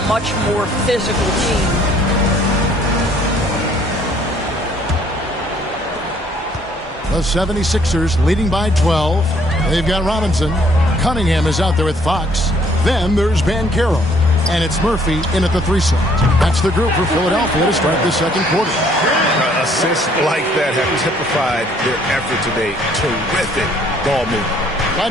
much more physical team. The 76ers leading by 12. They've got Robinson. Cunningham is out there with Fox. Then there's Banchero. And it's Murphy in at the 3 slot. That's the group for Philadelphia to start the second quarter. Assists like that have typified their effort today. Terrific ball movement.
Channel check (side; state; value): both; normal; correlation 0.62